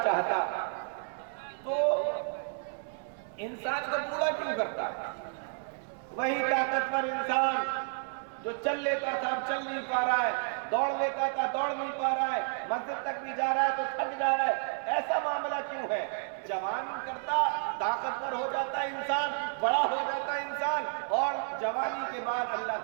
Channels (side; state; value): left; silent; 57 dB below the other